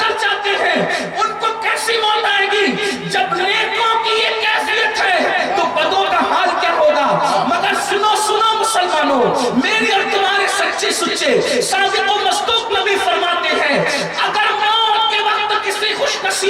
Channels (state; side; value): identical; both; correlation 1.00